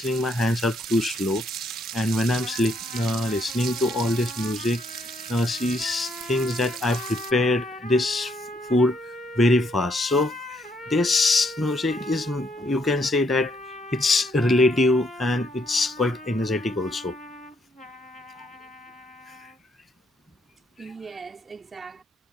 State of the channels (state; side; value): normal; both; correlation 0.72